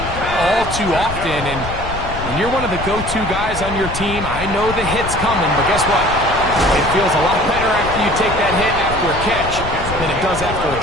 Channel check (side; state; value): left; noise; rumble, 8 dB below the sound